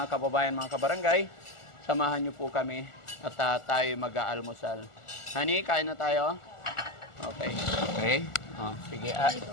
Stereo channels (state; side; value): late; right; 1.4 ms